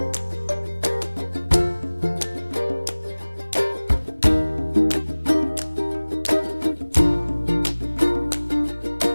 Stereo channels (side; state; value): both; inverted; correlation -1.00